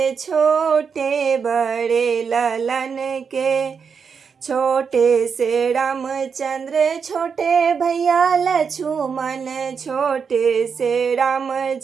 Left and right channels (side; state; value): left; quieter; 6.1 dB